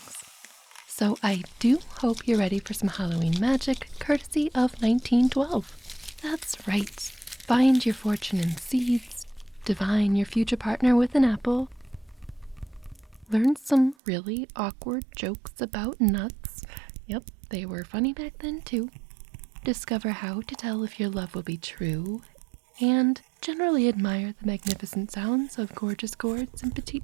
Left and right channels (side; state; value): left; drops out; at 14.0 s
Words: So I do hope you're ready for some Halloween magic, courtesy of 1912. That's right. Find your fortune in seeds, divine your future partner with an apple, learn some really awkward jokes about nuts. Yep, they were funny back then too. Discover how to tell if your love will be true, and generally admire the magnificent sounds of gorgeous gourds and